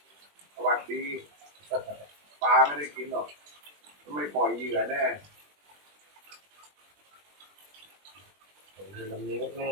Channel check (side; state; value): left; late; 20 ms